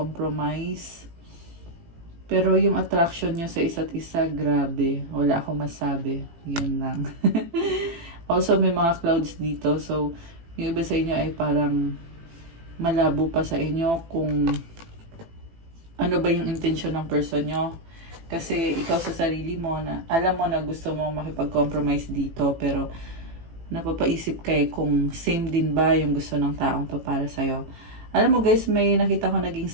Pero yung attraction nyo sa isa't isa, grabe. Wala akong masabi. Yun lang. Also, may mga clouds dito. So, yung iba sa inyo ay parang malabo pa sa inyo kung ano ba yung intention ng person nyo. Kasi ikaw sa sarili mo, na alam mo na gusto mo makipag-compromise dito, pero napapaisip ka kung same din ba yung gusto ng taong to para sa'yo. Alam mo guys, may nakita ko naging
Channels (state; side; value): late; left; 18 ms